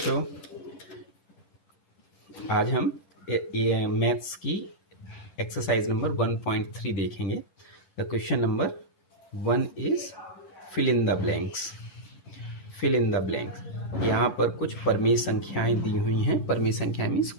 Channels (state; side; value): late; right; 11 ms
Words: आज हम मैथ्स की एक्सरसाइज नंबर 1.3 देखेंगे। The question number 1 is fill in the blanks. Fill in the blanks, यहाँ पर कुछ परमेय संख्याएं दी हुई हैं। परमेय संख्याएं मीन्स